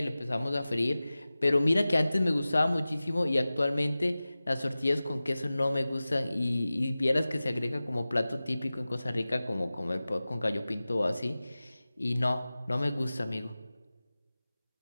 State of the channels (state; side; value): inverted; both; correlation -0.97